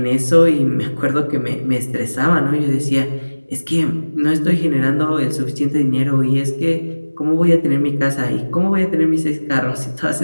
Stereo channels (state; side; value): inverted; both; correlation -1.00